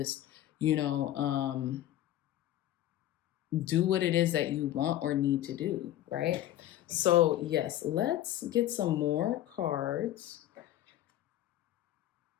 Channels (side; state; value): right; quieter; 13.3 dB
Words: do what it is that you want or need to do, right? So yes, let's get some more cards.